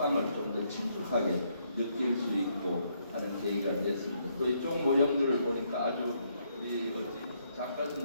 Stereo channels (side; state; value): both; inverted; correlation -0.74